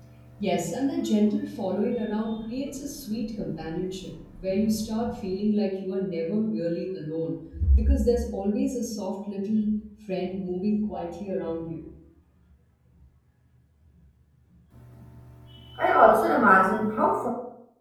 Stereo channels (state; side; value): identical; both; correlation 1.00